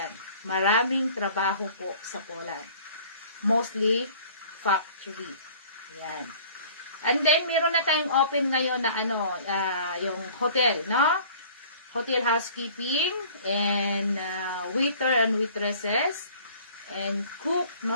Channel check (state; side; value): inverted; both; correlation -0.49